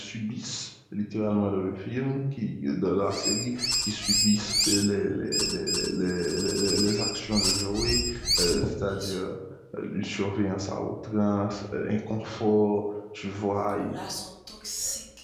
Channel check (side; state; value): both; identical; correlation 1.00